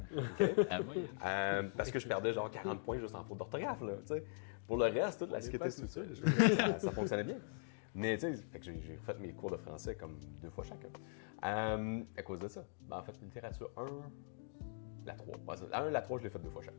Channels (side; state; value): right; silent; digital silence